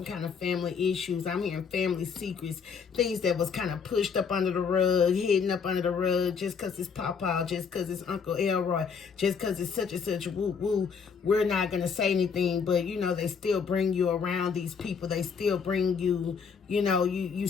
kind of family issues. I'm hearing family secrets, things that was kind of pushed up under the rug, hidden up under the rug, just because it's Papa, just because it's Uncle Elroy, just because it's such and such, woo. We're not going to say anything, but they still bring you around these people. They still bring you, you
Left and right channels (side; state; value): right; quieter; 6.1 dB